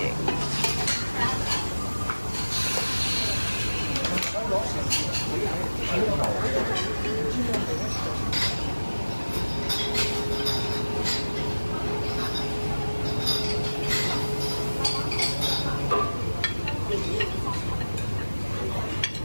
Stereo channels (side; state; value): both; inverted; correlation -1.00